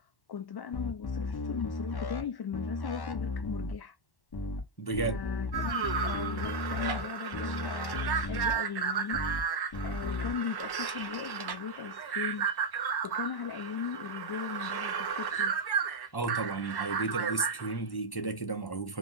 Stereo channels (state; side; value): late; right; 1.1 ms